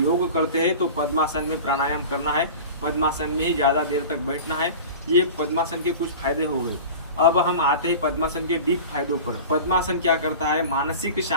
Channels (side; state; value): both; inverted; correlation -0.35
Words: करते हैं तो पद्मासन में प्राणायाम करना है, पद्मासन में ही ज्यादा देर तक बैठना है। ये पद्मासन के कुछ फायदे हो गए। अब हम आते हैं पद्मासन के डीप फायदों पर। पद्मासन क्या करता है, मानसिक